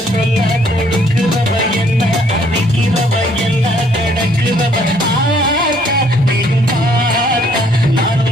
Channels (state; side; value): normal; both; correlation 0.64